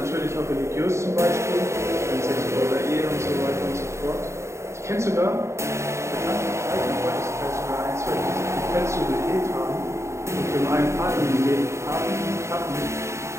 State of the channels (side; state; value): left; late; 0.14 ms